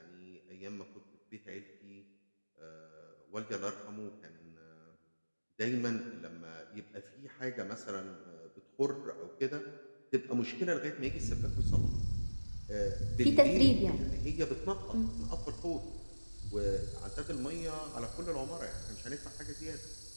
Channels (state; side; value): inverted; both; correlation -1.00